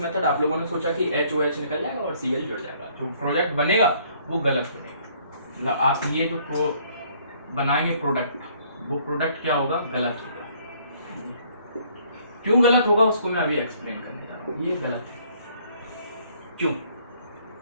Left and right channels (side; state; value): both; inverted; correlation -0.62